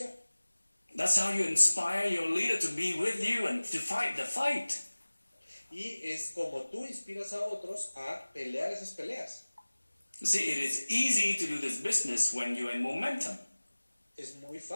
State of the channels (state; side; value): inverted; both; correlation -1.00